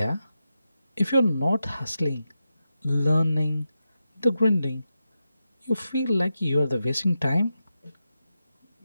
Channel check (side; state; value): both; inverted; correlation -0.89